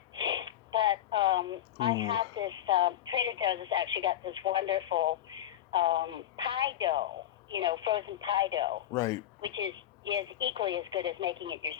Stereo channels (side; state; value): right; quieter; 11.8 dB